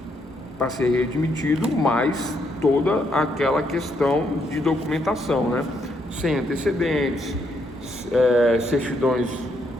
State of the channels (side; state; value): both; normal; correlation 0.75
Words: para ser readmitido, mais toda aquela questão de documentação, né? Sem antecedentes, certidões,